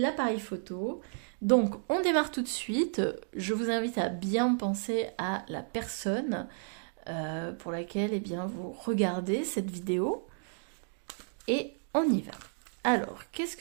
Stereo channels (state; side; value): silent; left; digital silence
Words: photo. Donc, on démarre tout de suite. Je vous invite à bien penser à la personne pour laquelle eh bien, vous regardez cette vidéo. Et on y va. Alors, qu'est-ce